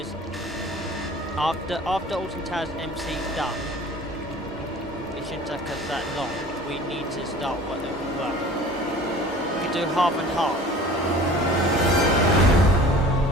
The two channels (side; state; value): both; normal; correlation 0.45